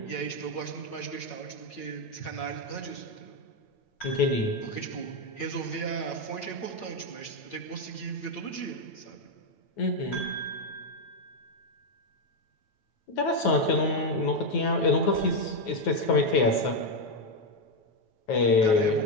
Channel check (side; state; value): right; late; 9.3 ms